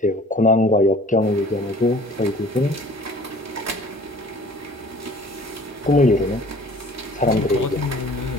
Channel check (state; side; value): normal; both; correlation 0.50